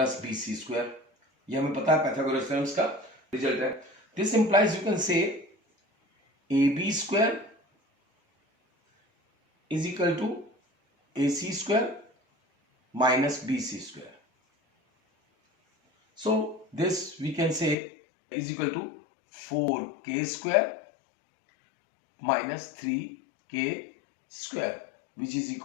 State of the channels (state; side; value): drops out; right; at 17.8 s